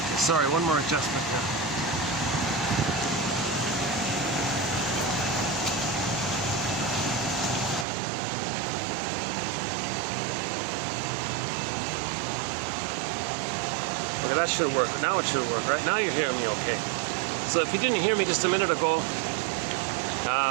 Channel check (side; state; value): left; drops out; at 7.9 s